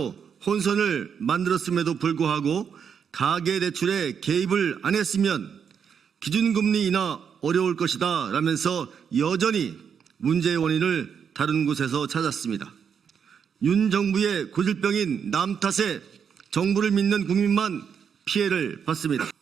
혼선을 만들었음에도 불구하고 가계대출에 개입을 안 했으면 기준금리 인하 어려울 것이다 라면서 여전히 문제의 원인을 다른 곳에서 찾았습니다. 윤 정부의 고질병인 남 탓에 정부를 믿는 국민만 피해를 받습니다.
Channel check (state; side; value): quieter; left; 7.2 dB